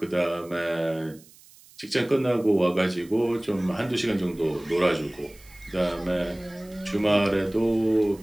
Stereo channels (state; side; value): noise; right; hiss, 25 dB below the sound